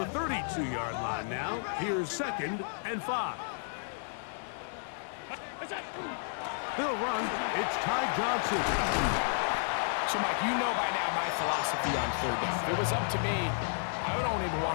the 32-yard line now, here's 2nd and 5. They'll run. It's Ty Johnson. So, Mike, you know by now my philosophy on third down. If it was up to me, I don't even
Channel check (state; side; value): silent; right; digital silence